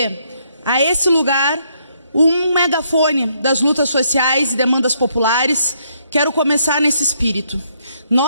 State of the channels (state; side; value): inverted; both; correlation -0.72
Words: a esse lugar um megafone das lutas sociais e demandas populares. Quero começar nesse espírito.